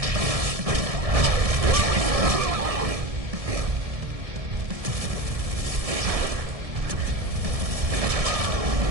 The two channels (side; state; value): left; late; 1.7 ms